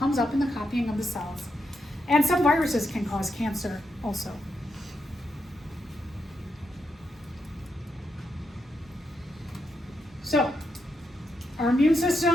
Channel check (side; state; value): both; normal; correlation 0.83